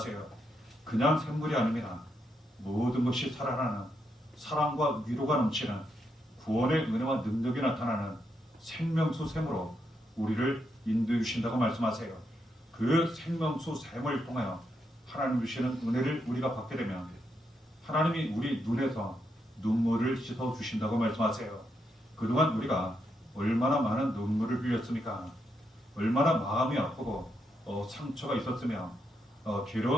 그냥 샘물이 아닙니다. 모든 것이 살아나는 사랑과 위로가 넘치는 구원의 은혜와 능력이 나타나는 생명수 샘으로 우리를 인도해 주신다고 말씀하세요. 그 생명수 샘을 통하여 하나님 주시는 은혜를 우리가 받게 되면 하나님이 우리 눈에서 눈물을 씻어 주신다고 말씀하세요. 그동안 우리가 얼마나 많은 눈물을 흘렸습니까? 얼마나 마음이 아프고 상처가 있었으며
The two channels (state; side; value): normal; both; correlation 0.81